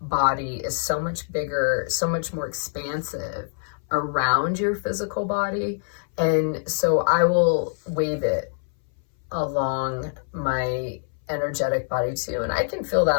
body is so much bigger, so much more expansive around your physical body. And so I will wave it along my energetic body too. And I can feel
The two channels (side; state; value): right; silent; 60 dB below the other